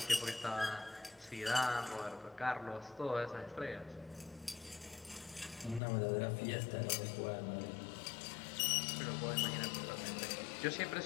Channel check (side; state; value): right; drops out; at 5.8 s